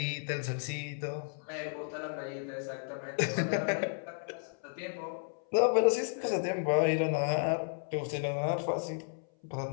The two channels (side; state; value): right; silent; 56 dB below the other